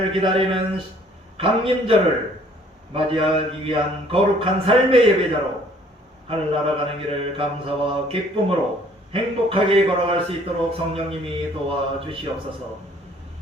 기다리는 강림절을 맞이하기 위한 거룩한 삶의 예배자로 하늘나라 가는 길을 감사와 기쁨으로 행복하게 걸어갈 수 있도록 성령님이 도와주시옵소서.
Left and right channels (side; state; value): both; normal; correlation 0.58